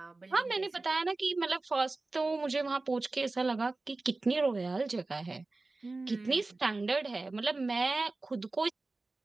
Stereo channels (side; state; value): left; quieter; 3.3 dB